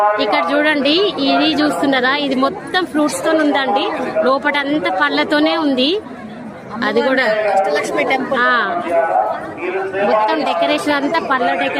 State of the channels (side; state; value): both; identical; correlation 1.00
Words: ఇక్కడ చూడండి, ఇది చూస్తున్నారా, ఇది మొత్తం ఫ్రూట్స్ తో ఉందండి. లోపల అంతా పళ్ళతోనే ఉంది. అది కూడా అష్టలక్ష్మి టెంపుల్ మొత్తం డెకరేషన్ అంతా పళ్ళ